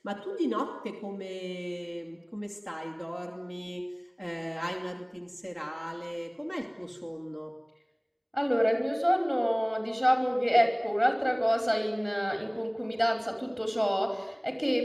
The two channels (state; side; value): identical; both; correlation 1.00